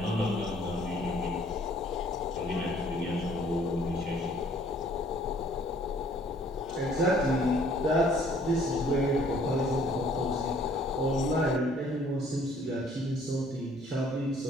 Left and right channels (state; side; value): normal; both; correlation 0.59